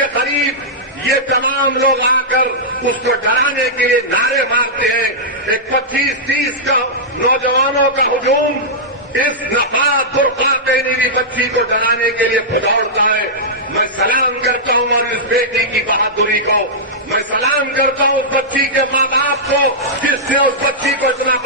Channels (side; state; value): both; normal; correlation -0.11